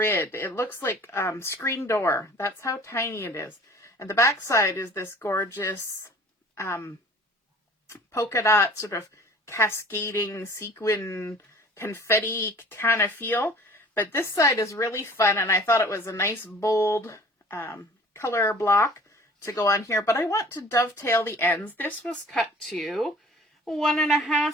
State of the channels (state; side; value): normal; both; correlation 0.47